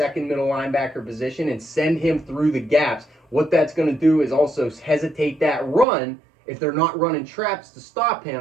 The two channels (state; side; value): drops out; left; at 5.9 s